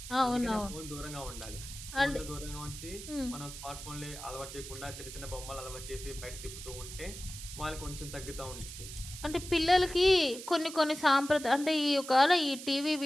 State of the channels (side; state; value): right; noise; hiss, 11 dB below the sound